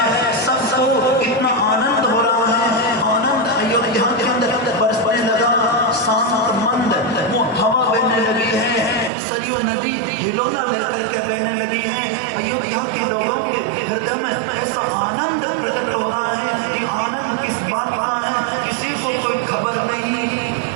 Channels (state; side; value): drops out; left; at 9.1 s